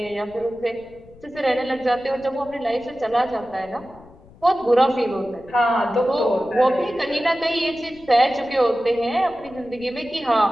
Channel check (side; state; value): left; noise; rumble, 24 dB below the sound